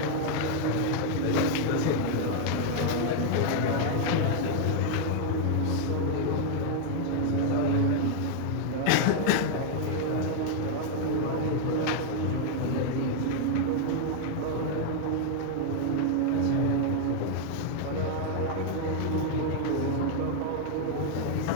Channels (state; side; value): different; both; correlation 0.00